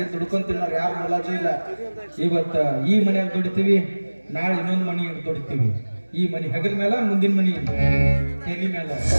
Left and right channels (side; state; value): both; inverted; correlation -1.00